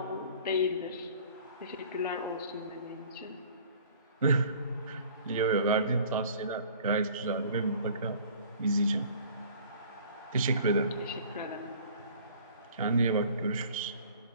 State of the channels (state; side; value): inverted; both; correlation -0.50